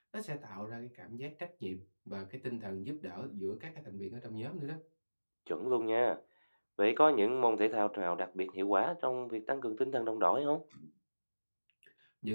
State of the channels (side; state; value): both; inverted; correlation -1.00